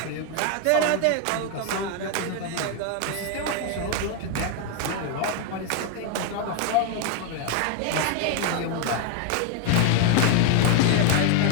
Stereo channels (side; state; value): both; different; correlation 0.00